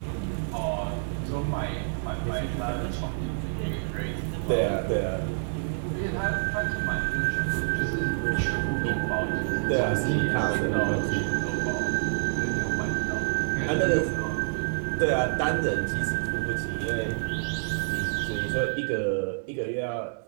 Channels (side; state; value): left; silent; digital silence